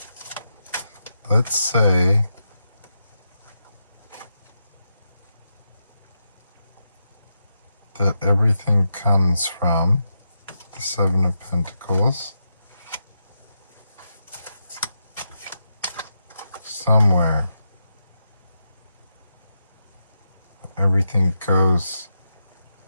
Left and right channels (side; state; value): both; inverted; correlation -0.85